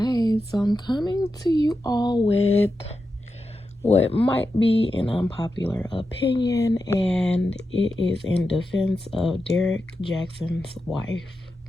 so I'm coming to you all with what might be an unpopular opinion, and it is in defense of Derrick Jaxn's wife.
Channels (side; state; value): both; normal; correlation 0.89